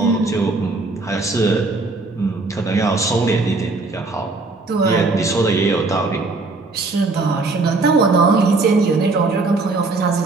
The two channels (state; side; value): quieter; left; 3.5 dB